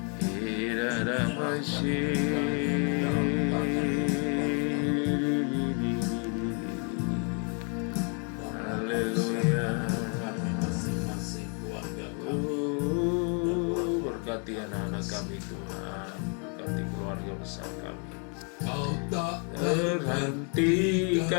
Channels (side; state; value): right; quieter; 39.2 dB